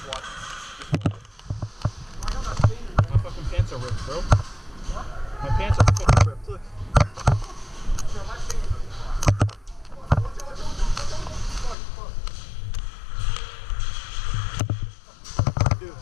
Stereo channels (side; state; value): right; drops out; at 11.8 s